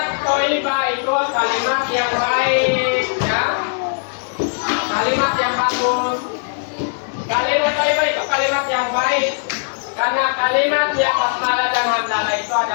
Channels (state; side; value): silent; right; digital silence